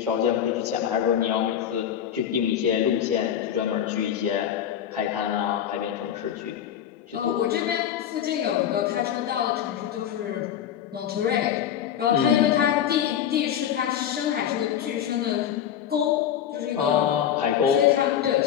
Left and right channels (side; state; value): right; quieter; 9.8 dB